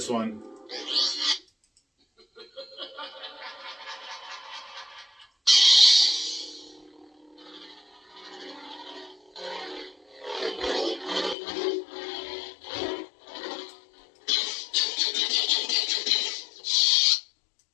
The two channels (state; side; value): drops out; right; at 11.4 s